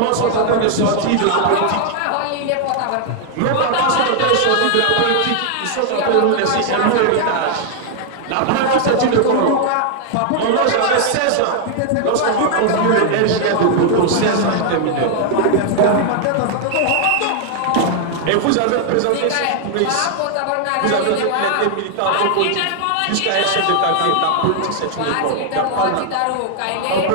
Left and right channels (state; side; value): different; both; correlation 0.00